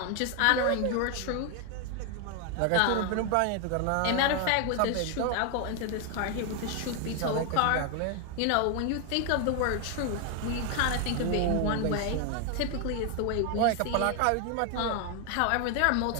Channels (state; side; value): different; both; correlation 0.01